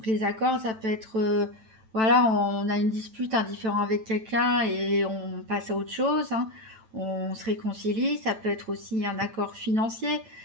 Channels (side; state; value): left; late; 9.1 ms